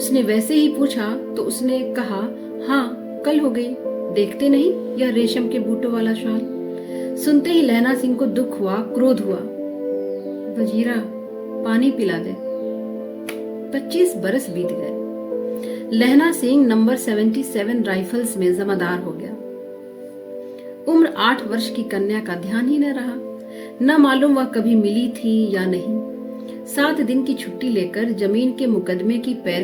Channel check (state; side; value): identical; both; correlation 1.00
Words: वैसे ही पूछा तो उसने कहा, हाँ कल हो गई, देखते नहीं यह रेशम के बूटों वाला शाल। सुनते ही लहना सिंह को दुख हुआ, क्रोध हुआ। वजीरा पानी पिला दे। 25 बरस बीत गए। लहना सिंह नंबर 77 राइफल्स में जमादार हो गया। उम्र 8 वर्ष की कन्या का ध्यान ही न रहा। न मालूम वह कभी मिली थी या नहीं। 7 दिन की छुट्टी लेकर जमीन के मुकदमे की